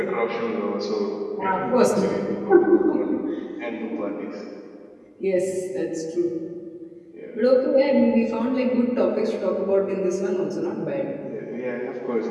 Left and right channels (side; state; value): both; identical; correlation 1.00